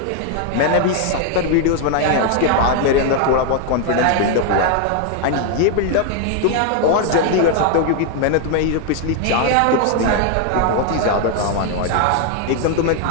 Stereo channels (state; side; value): different; both; correlation 0.00